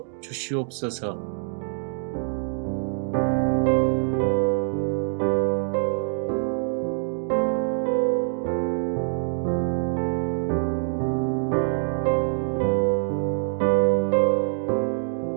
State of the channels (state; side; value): silent; left; digital silence